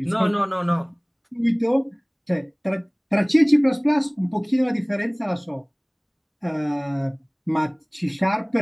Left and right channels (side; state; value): both; identical; correlation 1.00